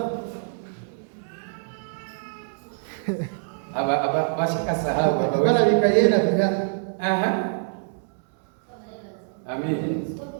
Aba bashaka sahaba bana bikayena bya. Aha. Amen.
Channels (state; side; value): silent; left; 62 dB below the other